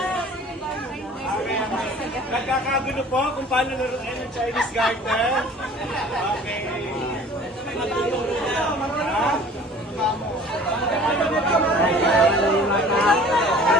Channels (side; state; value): both; normal; correlation 0.47